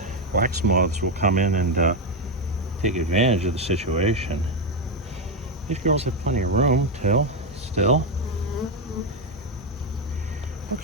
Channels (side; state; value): both; normal; correlation 0.06